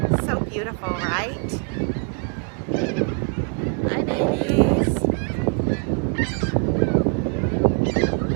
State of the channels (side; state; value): left; quieter; 37.8 dB